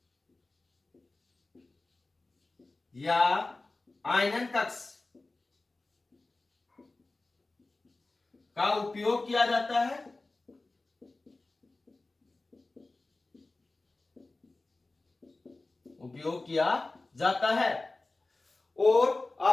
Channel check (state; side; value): quieter; right; 3.2 dB